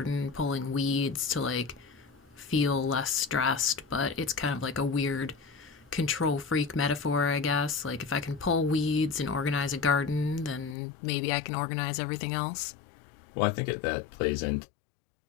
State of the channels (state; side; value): drops out; right; at 10.8 s